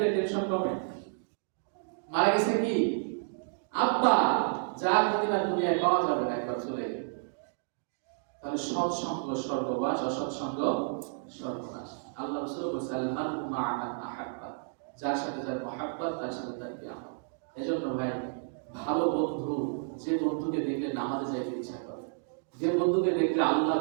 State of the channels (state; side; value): silent; left; digital silence